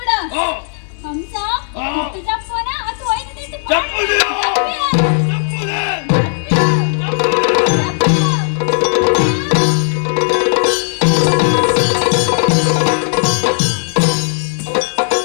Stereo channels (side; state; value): right; silent; digital silence